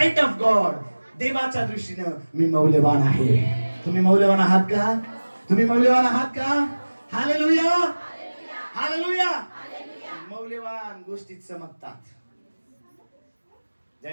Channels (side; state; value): both; inverted; correlation -1.00